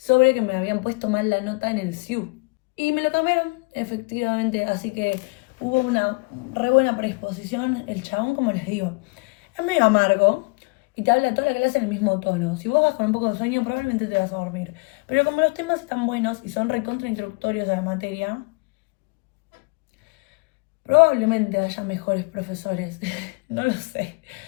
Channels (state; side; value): quieter; right; 30.2 dB